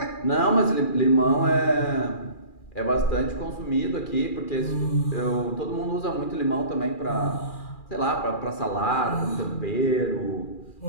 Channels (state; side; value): late; right; 2.4 ms